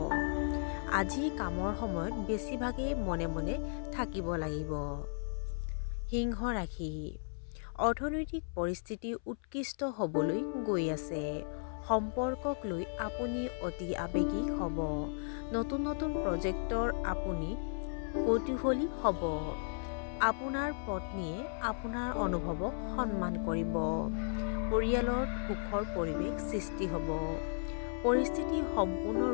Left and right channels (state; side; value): silent; right; 54 dB below the other